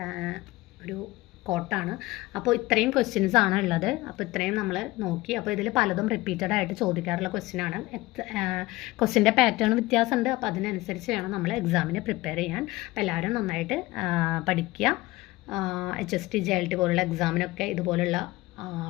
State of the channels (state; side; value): quieter; right; 19.7 dB